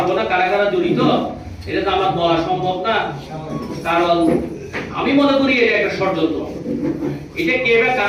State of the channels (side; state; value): both; identical; correlation 1.00